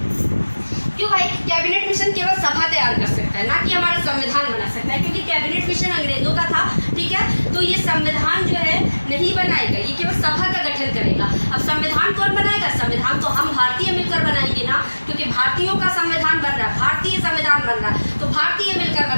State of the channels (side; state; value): both; inverted; correlation -1.00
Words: क्यों भाई? कैबिनेट मिशन केवल सभा तैयार कर सकता है, ना कि हमारा संविधान बना सकता है, क्योंकि कैबिनेट मिशन अंग्रेजों का था, ठीक है। तो ये संविधान जो है नहीं बनाएगा, ये केवल सभा का गठन करेगा। अब संविधान कौन बनाएगा? संविधान तो हम भारतीय मिलकर बनाएंगे ना, क्योंकि भारतीयों का संविधान बन रहा है, भारतीय संविधान बन रहा है, तो भारतीय मिलकर